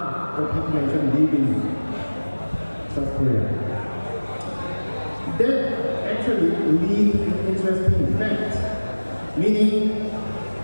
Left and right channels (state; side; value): inverted; both; correlation -1.00